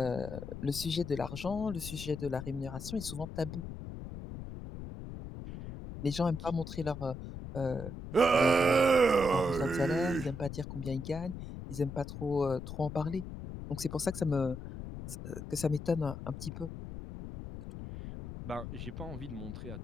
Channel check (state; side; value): noise; left; rumble, 9 dB below the sound